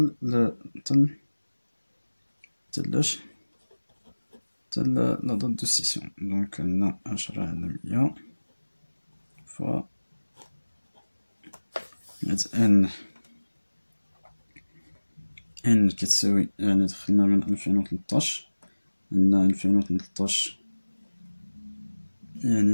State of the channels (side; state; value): both; inverted; correlation -1.00